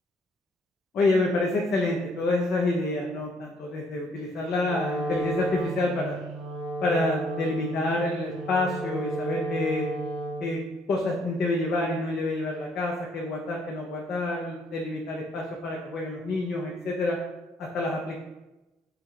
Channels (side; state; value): both; normal; correlation 0.66